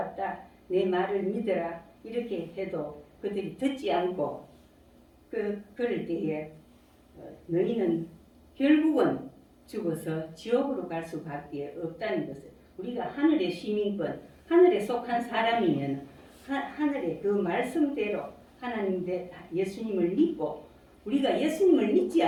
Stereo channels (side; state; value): both; identical; correlation 1.00